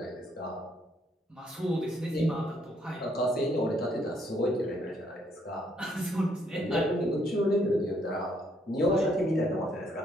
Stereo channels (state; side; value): normal; both; correlation 0.70